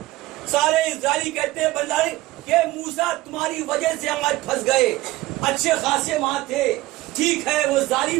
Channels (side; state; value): left; quieter; 18.6 dB